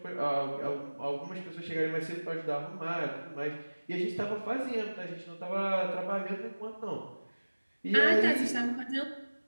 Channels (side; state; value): both; inverted; correlation -1.00